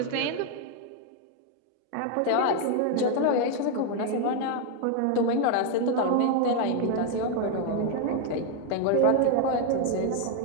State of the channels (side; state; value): both; different; correlation 0.01